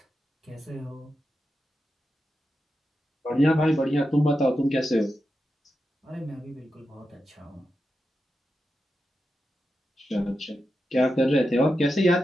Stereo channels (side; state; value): both; normal; correlation 0.89